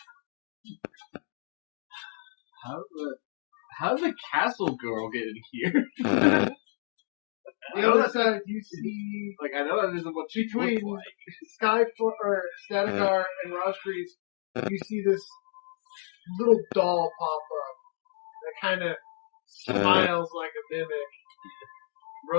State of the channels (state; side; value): silent; right; digital silence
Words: How did the castle girl get in here? The other side, you see Like, I know that isn't what she between looks like. Statigar and Rosgreaves, you see this little doll pop up that kind of smiles like a mimic,